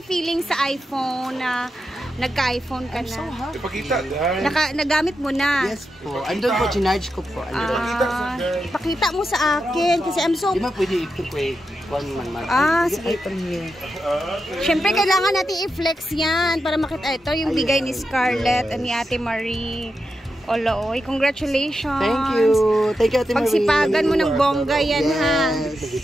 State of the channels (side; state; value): both; normal; correlation 0.88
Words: feeling sa iPhone na nagka-iPhone ka na? Ipakita. Nagamit mo na? Yes po. Andun po, chinarge ko po. Pakita mo sa akin. Kasi I'm so... Di ba pwede ito po eh. Sige. Siyempre, kailangan natin i-flex yan para makita. Ito yung bigay ni Scarlett at ni Ate Marie. Oloy, congratulations. Thank you. Thank you, Ate Marie. Pagsipagan mo ng bongga yan, ha.